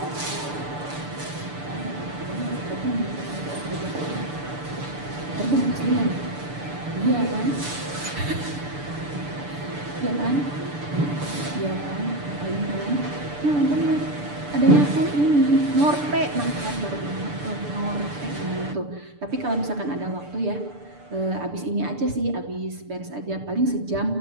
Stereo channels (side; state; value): left; late; 6.8 ms